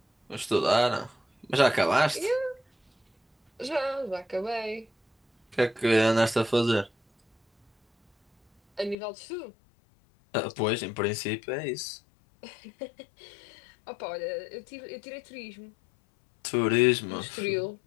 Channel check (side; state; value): right; drops out; at 9.0 s